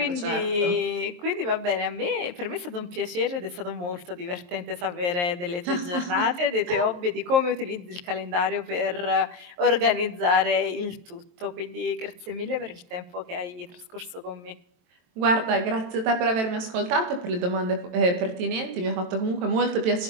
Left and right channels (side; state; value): left; late; 23 ms